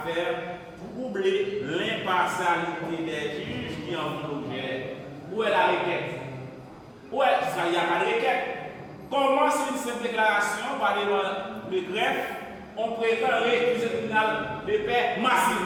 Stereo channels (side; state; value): both; identical; correlation 1.00